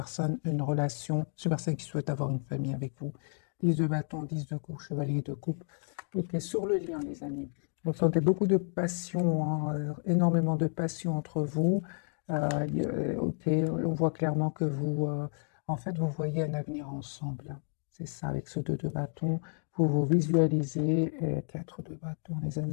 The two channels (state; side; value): silent; right; 57 dB below the other